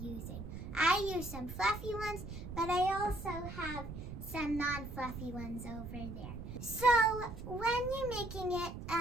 I use some fluffy ones, but I also have some non-fluffy ones over there. So when you're making it,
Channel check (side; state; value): right; noise; rumble, 9 dB below the sound